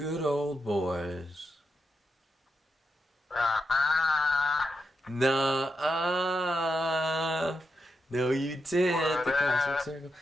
old boys. Nah. No, you did. The Cosmic Circle.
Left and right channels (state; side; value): normal; both; correlation 0.86